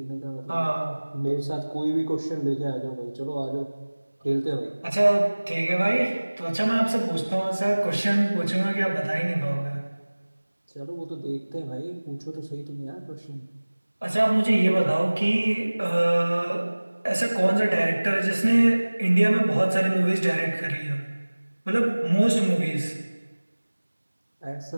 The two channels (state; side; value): inverted; both; correlation -1.00